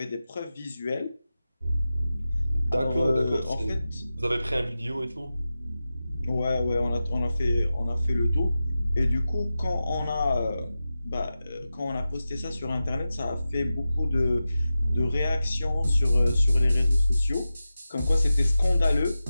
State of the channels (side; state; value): both; inverted; correlation -0.93